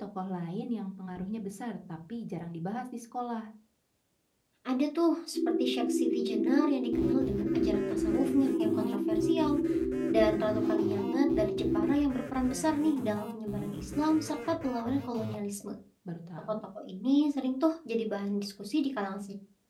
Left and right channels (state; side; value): identical; both; correlation 1.00